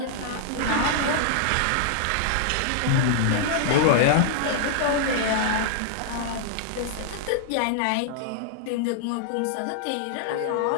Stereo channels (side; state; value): both; different; correlation -0.01